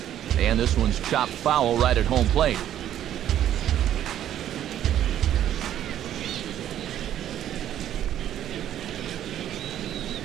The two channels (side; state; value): left; quieter; 11.3 dB